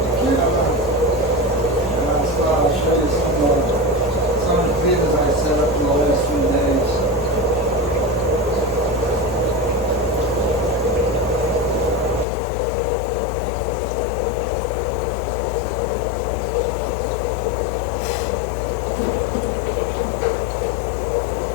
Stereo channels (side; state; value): right; drops out; at 12.2 s